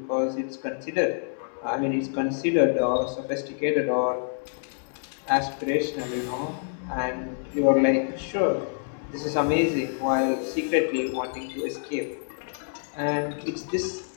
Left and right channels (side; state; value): right; silent; 60 dB below the other